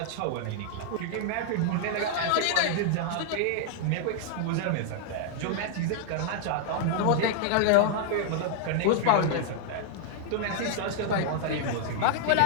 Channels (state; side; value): different; both; correlation -0.01